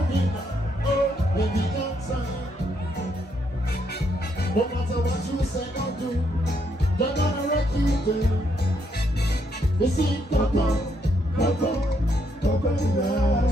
it. Oh, baby, don't sign. No matter what you say, don't do. They're gonna wreck you, girl. You see, Coco,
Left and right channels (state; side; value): normal; both; correlation 0.75